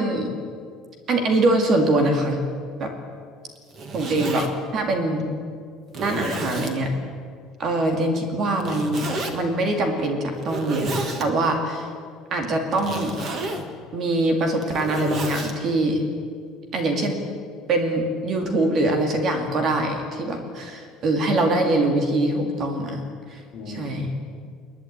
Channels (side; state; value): both; normal; correlation 0.54